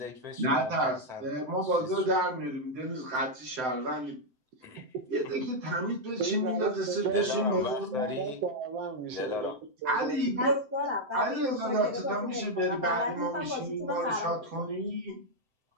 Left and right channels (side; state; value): left; late; 7.7 ms